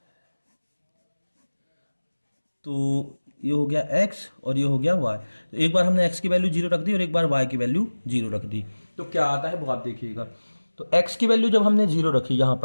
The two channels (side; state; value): both; inverted; correlation -1.00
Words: तो ये हो गया x और ये हो गया y। तो एक बार हमने x की वैल्यू 0 रख दी और एक बार y की वैल्यू 0 रख दी, तो क्या आता है वो आप देखिएगा। तो x की वैल्यू जब हमने 0 रखी, यहां